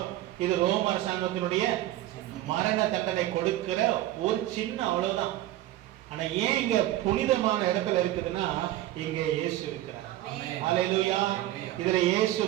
இது ரோம அரசாங்கத்தினுடைய மரண தண்டனை கொடுக்கிற ஒரு சின்ன அவ்வளவுதான். ஆனா ஏன் இங்க புனிதமான இடத்துல இருக்குதுன்னா இங்க இயேசு இருக்கிறார். ஹல்லேலூயா. இதுல இயேசு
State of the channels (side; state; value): left; quieter; 14.9 dB